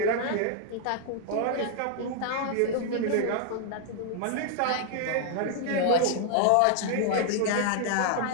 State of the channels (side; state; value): both; different; correlation 0.00